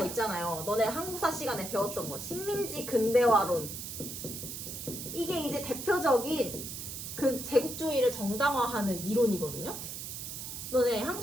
있잖아요. 너네 한국사 시간에 배웠던 거. 식민지 근대화론. 이게 이제 대표적인 그 제국주의를 정당화하는 이론이거든요. 너네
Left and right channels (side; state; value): right; noise; hiss, 7 dB below the sound